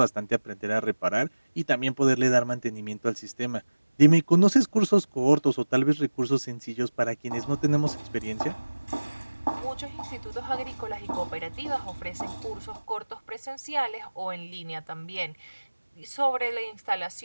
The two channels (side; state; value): both; inverted; correlation -1.00